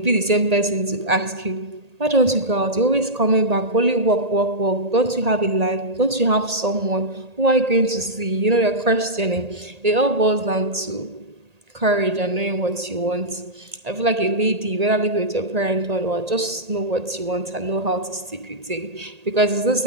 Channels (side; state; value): left; late; 1.8 ms